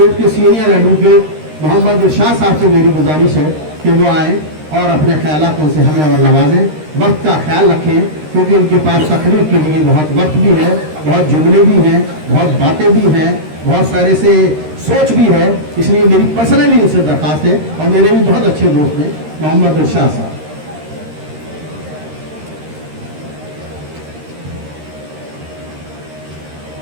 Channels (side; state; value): left; late; 13 ms